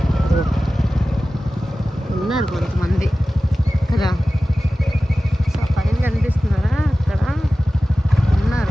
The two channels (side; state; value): both; normal; correlation 0.96